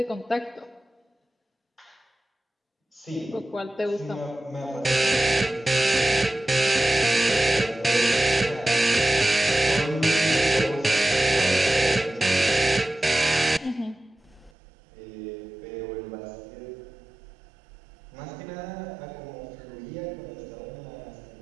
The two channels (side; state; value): left; drops out; at 14.5 s